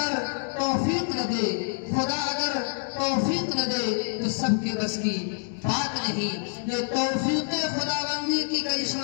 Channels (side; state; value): right; silent; 60 dB below the other